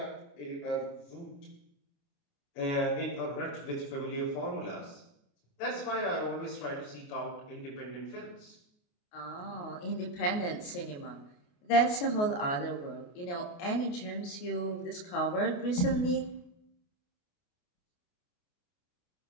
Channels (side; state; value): right; late; 28 ms